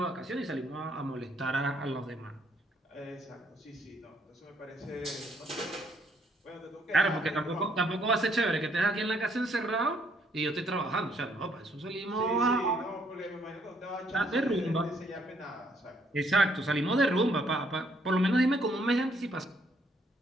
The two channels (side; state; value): both; normal; correlation 0.69